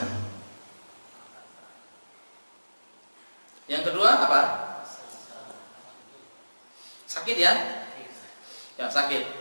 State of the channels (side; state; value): both; inverted; correlation -1.00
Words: Yang kedua apa? Sakit, ya? Ya,